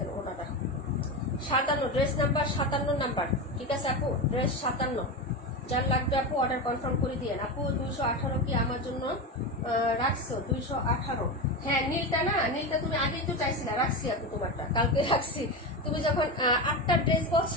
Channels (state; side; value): normal; both; correlation 0.19